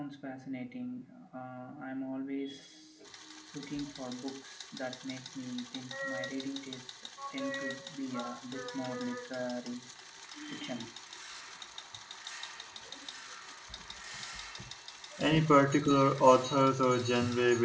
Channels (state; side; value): identical; both; correlation 1.00